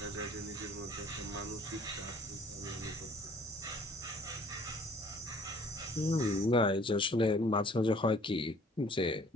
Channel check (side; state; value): both; normal; correlation 0.56